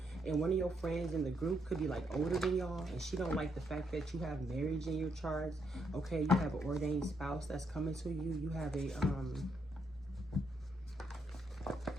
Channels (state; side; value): normal; both; correlation 0.76